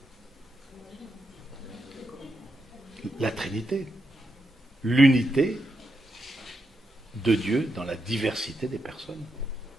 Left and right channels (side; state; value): both; normal; correlation 0.84